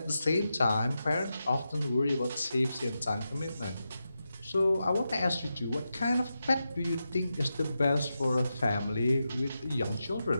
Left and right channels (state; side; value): inverted; both; correlation -0.89